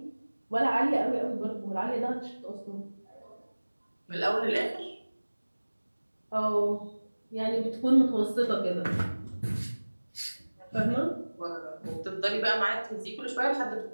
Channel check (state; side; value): inverted; both; correlation -1.00